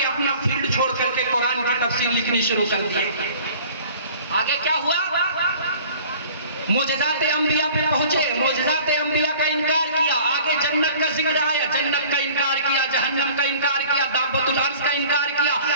اپنا فیلڈ چھوڑ کر کے قرآن کی تفسیر لکھنی شروع کر دی. آگے کیا ہوا؟ معجزات انبیاء پہ پہنچے, معجزات انبیاء کا انکار کیا. آگے جنت کا ذکر آیا, جنت کا انکار کیا, جہنم کا انکار کیا, دابۃ الارض کا انکار کیا,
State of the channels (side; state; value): both; inverted; correlation -0.47